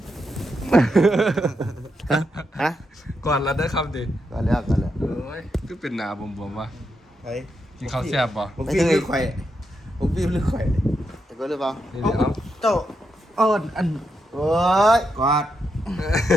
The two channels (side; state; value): both; normal; correlation 0.83